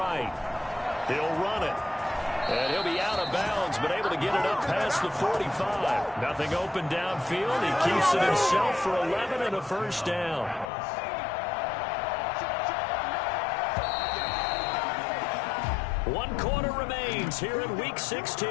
He'll run it. And he'll be out of bounds, but able to get it up past the 45. Nothing open downfield. He keeps it himself for 11 and a first down. One quarter remains here in Week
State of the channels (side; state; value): right; drops out; at 10.7 s